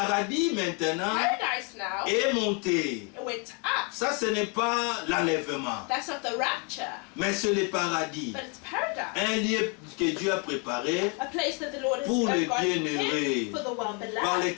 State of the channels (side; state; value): right; quieter; 32.1 dB